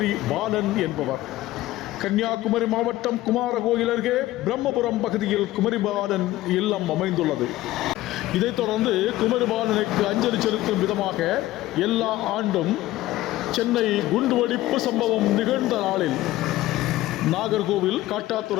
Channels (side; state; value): right; quieter; 16.2 dB